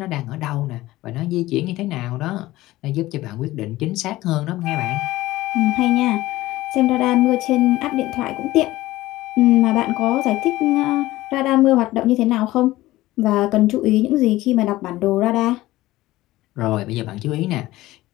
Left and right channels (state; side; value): quieter; right; 17.2 dB